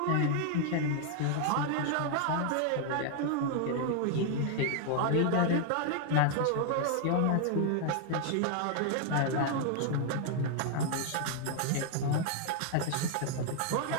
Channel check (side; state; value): both; different; correlation 0.00